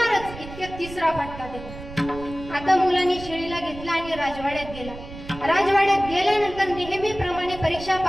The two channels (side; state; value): right; noise; rumble, 13 dB below the sound